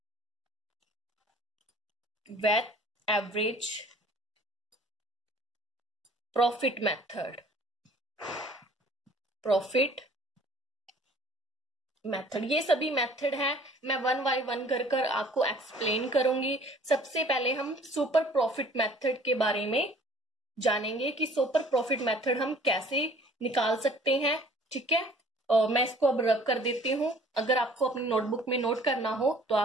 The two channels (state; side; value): normal; both; correlation 0.52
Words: वेट एवरेज प्रॉफिट मेथड। ये सभी मेथड है, मैं 1 बाय 1 कर आपको एक्सप्लेन करूंगी। सबसे पहले हम सुपर प्रॉफिट मेथड के बारे में जानेंगे कि सुपर प्रॉफिट मेथड हम कैसे निकाल सकते हैं। ठीक है, और मैं इसको अब रब कर देती हूं। अगर आपको अपनी नोटबुक में नोट करना हो तो